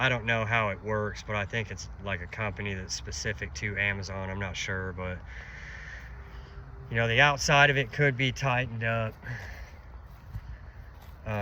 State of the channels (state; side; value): identical; both; correlation 1.00